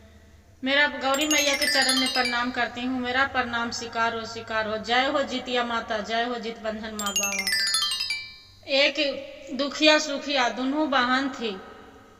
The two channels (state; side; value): identical; both; correlation 1.00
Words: मेरा गौरी मैया के चरण में प्रणाम करती हूँ। मेरा प्रणाम स्वीकार हो, स्वीकार हो। जय हो जितिया माता, जय हो जित बंधन माँ बाबा। एक दुखिया सुखिया दोनों बहन थी।